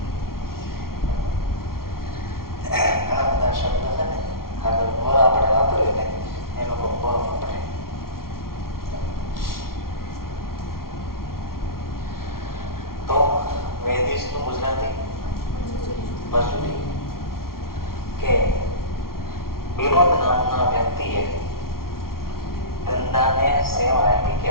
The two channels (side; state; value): right; late; 0.93 ms